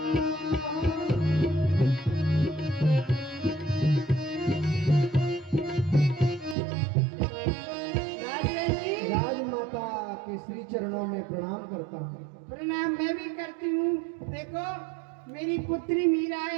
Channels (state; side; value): drops out; left; at 6.6 s